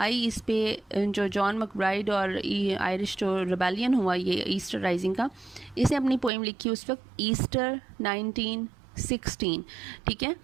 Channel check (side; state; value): left; drops out; at 6.3 s